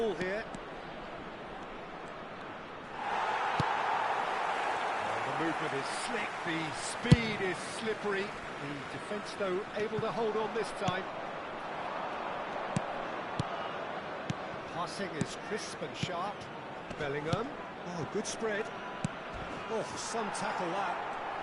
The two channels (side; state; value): both; identical; correlation 1.00